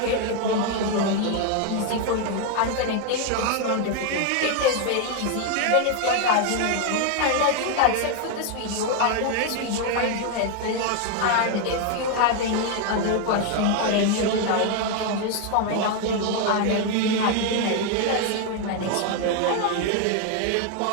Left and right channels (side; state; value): both; different; correlation 0.01